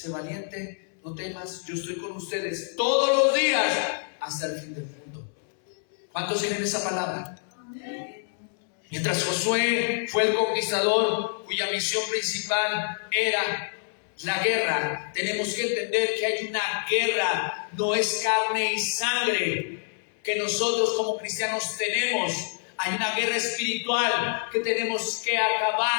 valiente, no temas, yo estoy con ustedes todos los días hasta el fin del mundo. ¿Cuántos tienen esa palabra? Amén. Mientras Josué fue el conquistador cuya misión principal era la guerra, tenemos que entender que hay una guerra, no es carne y sangre que nosotros como cristianos tenemos. Hay una guerra espiritual que tenemos que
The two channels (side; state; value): right; silent; 60 dB below the other